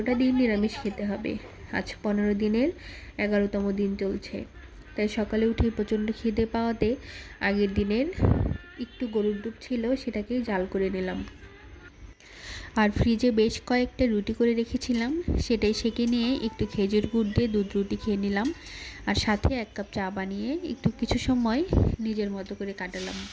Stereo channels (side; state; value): both; identical; correlation 1.00